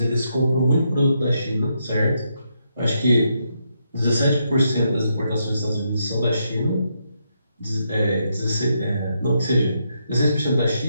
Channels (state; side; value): inverted; both; correlation -0.80